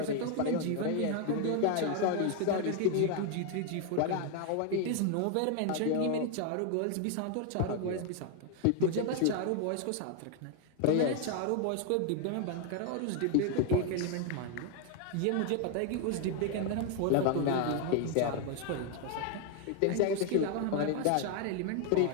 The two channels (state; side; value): different; both; correlation 0.00